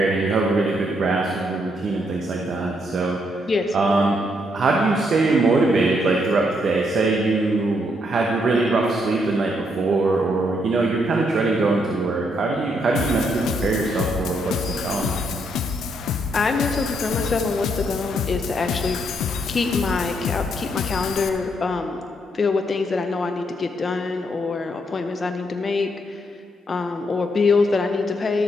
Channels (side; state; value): both; normal; correlation 0.75